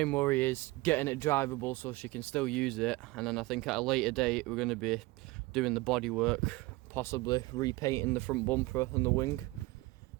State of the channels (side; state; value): left; quieter; 21.4 dB